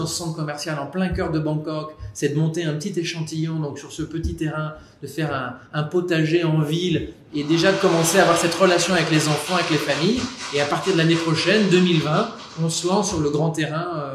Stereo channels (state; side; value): identical; both; correlation 1.00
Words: ce centre commercial, en plein cœur de Bangkok, c'est de monter un petit échantillon, donc sur ce petit terrain, de faire un potager en ville et déjà de commencer à avoir cette relation avec les enfants, avec les familles. Et à partir de l'année prochaine, 2020, on se lance sur le grand